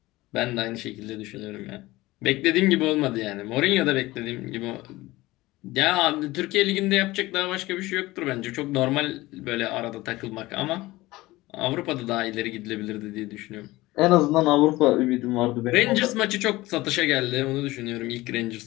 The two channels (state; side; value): quieter; right; 19.1 dB